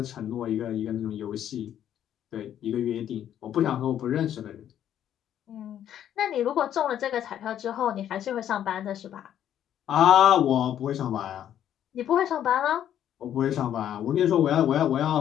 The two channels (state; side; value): quieter; right; 10.5 dB